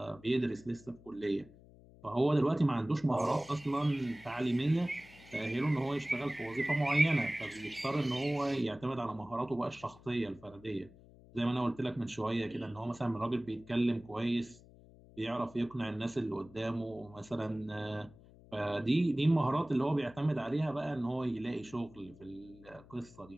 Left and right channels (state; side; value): noise; left; hum, 22 dB below the sound